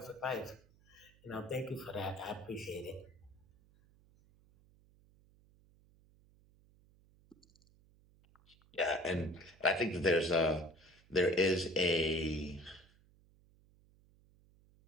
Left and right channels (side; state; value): right; noise; hum, 29 dB below the sound